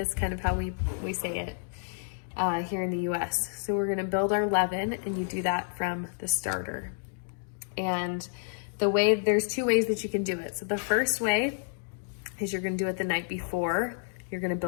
kind of how we say it here in the US. So we're gonna build our leaven, and you do that from the starter. And there's two ways that you can do it. So the first way is you're gonna do it the night before you're gonna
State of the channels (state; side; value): silent; right; digital silence